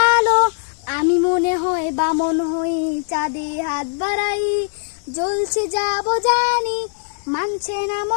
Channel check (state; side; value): silent; right; 66 dB below the other